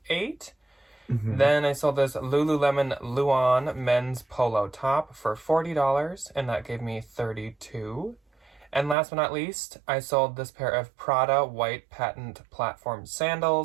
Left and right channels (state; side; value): drops out; left; at 9.0 s